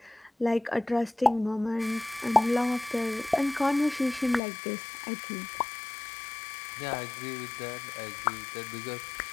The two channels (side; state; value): right; drops out; at 4.4 s